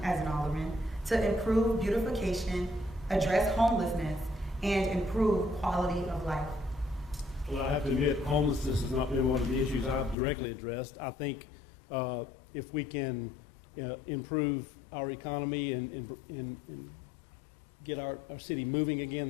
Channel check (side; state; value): right; drops out; at 10.2 s